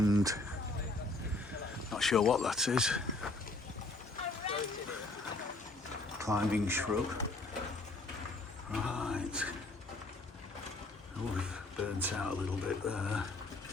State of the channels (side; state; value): right; quieter; 3.1 dB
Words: not sure what that is, climbing shrub. Right. Oh, we've burnt out a little bit there.